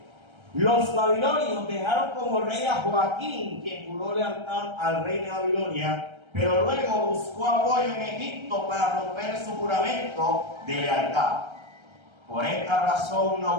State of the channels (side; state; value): left; late; 1.3 ms